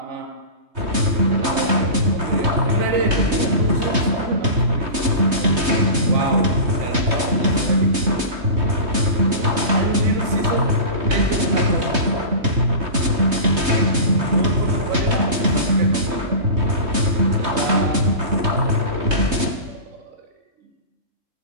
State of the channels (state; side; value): late; left; 3.2 ms